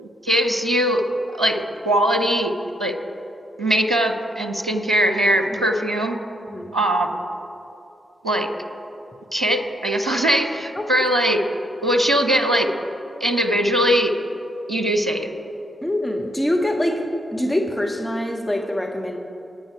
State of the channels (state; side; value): normal; both; correlation 0.71